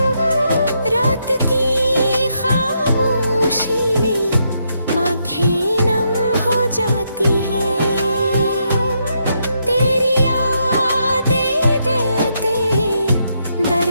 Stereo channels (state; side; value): inverted; both; correlation -0.79